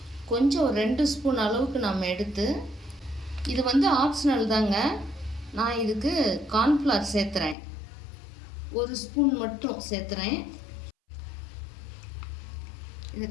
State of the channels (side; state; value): right; drops out; at 7.6 s